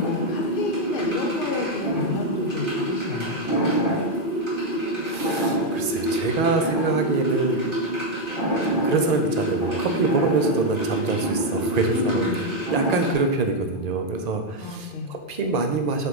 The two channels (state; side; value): late; right; 2.5 ms